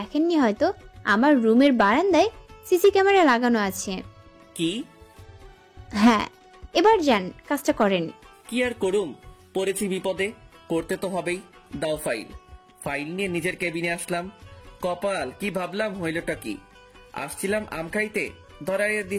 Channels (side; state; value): both; identical; correlation 1.00